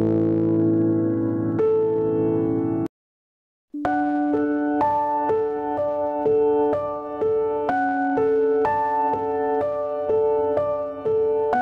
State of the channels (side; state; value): both; identical; correlation 1.00